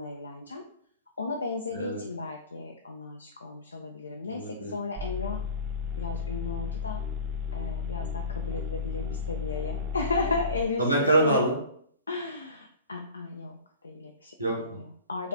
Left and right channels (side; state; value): both; inverted; correlation -0.38